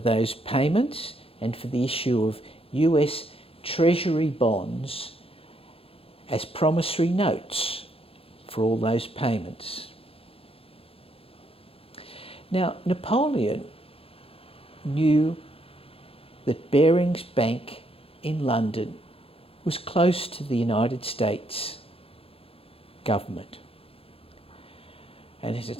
payments and for the issue of US Treasury bonds as promissory notes for all those payments. Now, Napoleon knew that Barings Bank in London was close to the United States government, and it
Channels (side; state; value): right; late; 0.27 ms